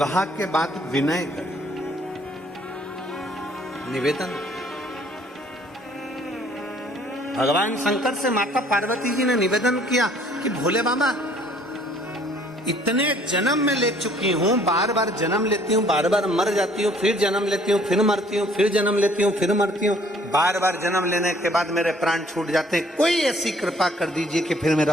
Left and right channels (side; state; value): both; normal; correlation 0.59